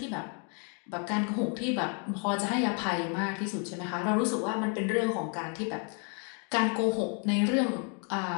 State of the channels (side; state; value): right; quieter; 38.9 dB